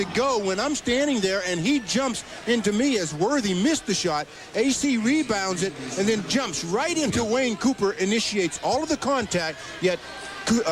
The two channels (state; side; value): identical; both; correlation 1.00